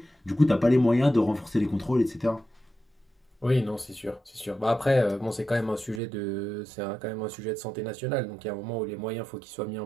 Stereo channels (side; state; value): left; drops out; at 6.0 s